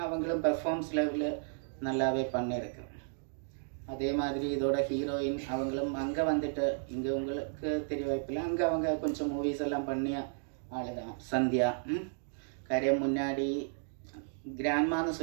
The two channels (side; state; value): left; silent; digital silence